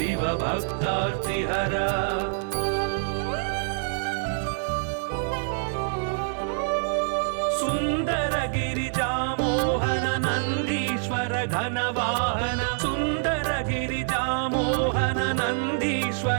भक्तार्तिहरा सुंदर गिरिजा मोहन नंदीश्वर घनवाहन सुंदर गिरिजा मोहन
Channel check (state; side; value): silent; left; digital silence